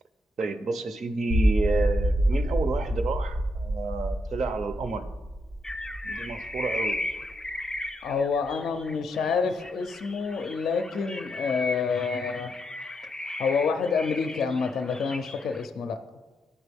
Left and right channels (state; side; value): normal; both; correlation 0.80